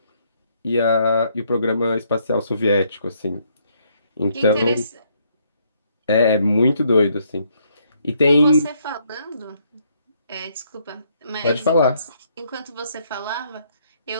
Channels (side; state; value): both; inverted; correlation -0.71